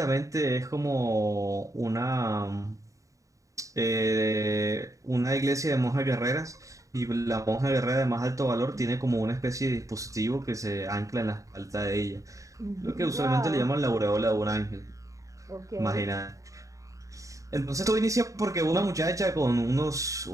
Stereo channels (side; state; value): left; late; 0.16 ms